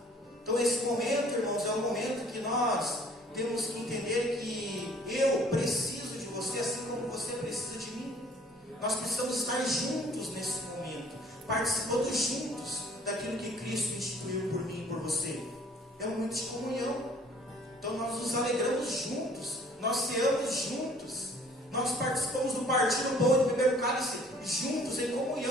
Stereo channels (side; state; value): both; normal; correlation 0.55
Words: Então esse momento, irmãos, é um momento que nós temos que entender que eu preciso de você, assim como você precisa de mim. Nós precisamos estar juntos nesse momento, participando juntos daquilo que Cristo instituiu por mim e por você. É um momento de comunhão. Então nós nos alegramos juntos, nós ceamos juntos, nós participamos do partir do pão e do beber do cálice juntos, em